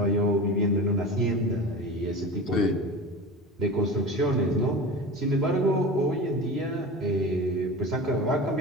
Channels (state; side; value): normal; both; correlation 0.31